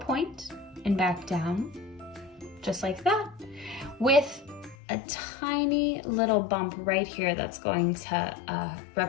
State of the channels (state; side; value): drops out; right; at 4.8 s